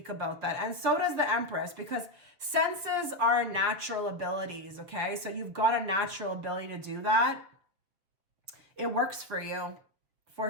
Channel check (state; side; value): late; left; 6.8 ms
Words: about that. And so does the Empress, because senses are natural abilities, okay? So you've got a natural ability to do that. It works for you, for